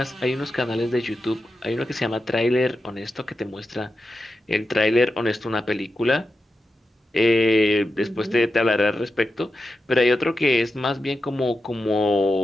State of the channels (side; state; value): both; normal; correlation 0.90